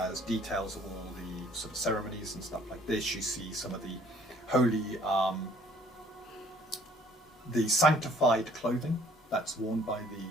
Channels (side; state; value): both; normal; correlation 0.58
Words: details of all the sort of ceremonies and stuff like this. You see some of the holy, the sanctified clothing that's worn by the